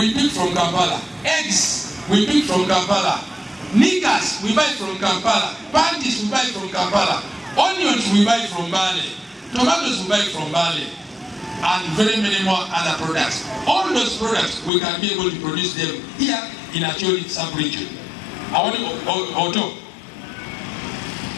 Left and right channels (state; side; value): drops out; right; at 14.7 s